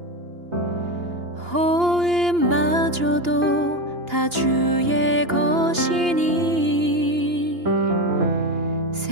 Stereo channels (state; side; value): late; left; 2.8 ms